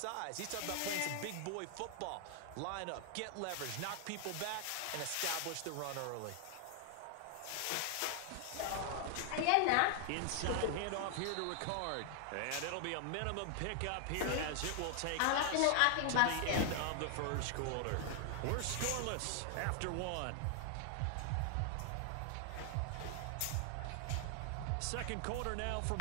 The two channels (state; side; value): different; both; correlation 0.00